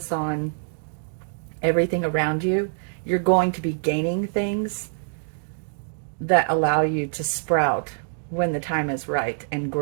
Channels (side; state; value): left; silent; 62 dB below the other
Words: on everything around you you're going to be gaining things that allow you to sprout when the time is right and